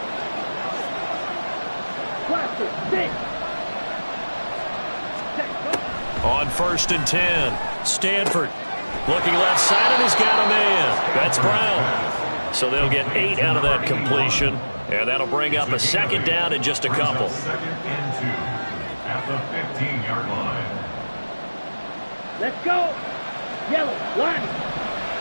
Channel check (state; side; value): inverted; both; correlation -1.00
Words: Cluster, six. On first and 10, Stanford looking left side, and he's got a man. That's Brown. So they'll get 8 out of that completion, and that'll bring up a second down in just a couple. Second and 2 at the 15-yard line. Let's go. Yellow, one.